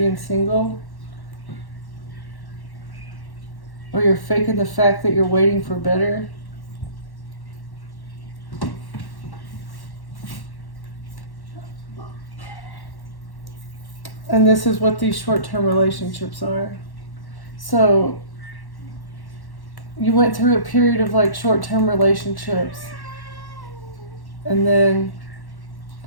single, or you're faking the fact that you're waiting for better. And this is what these short-term relationships are. So you went through a period of like short-term relationships, and then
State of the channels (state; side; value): late; right; 1.1 ms